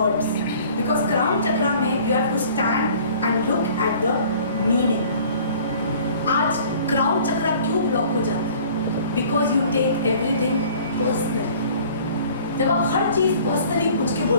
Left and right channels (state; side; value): inverted; both; correlation -0.50